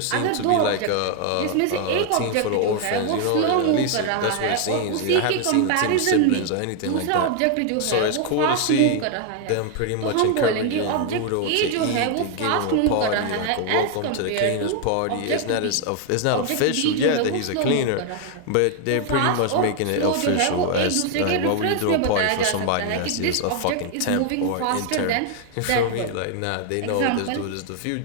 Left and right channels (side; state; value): both; different; correlation 0.00